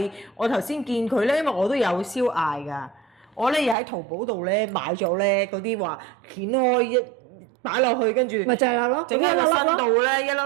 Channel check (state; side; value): drops out; left; at 3.8 s